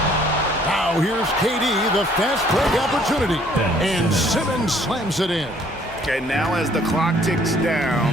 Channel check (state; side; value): normal; both; correlation 0.60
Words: Now here's KD, the fast break opportunity. And Simmons slams it in. And now as the clock ticks